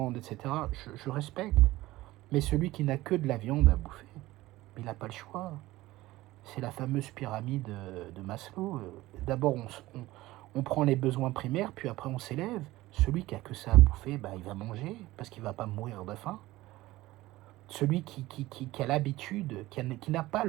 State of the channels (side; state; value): left; quieter; 17.8 dB